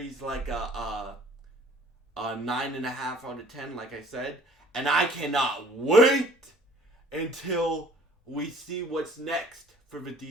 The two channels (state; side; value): normal; both; correlation 0.53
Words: like a 9.5 out of 10, like I said. And I cannot wait until we see what's next for the